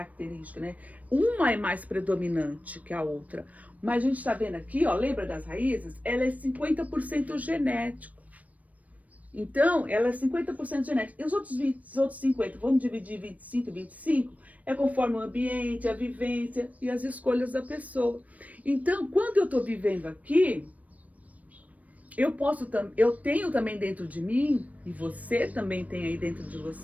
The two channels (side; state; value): left; late; 0.070 ms